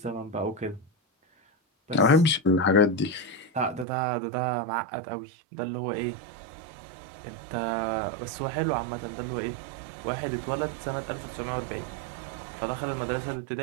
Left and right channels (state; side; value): drops out; left; at 3.9 s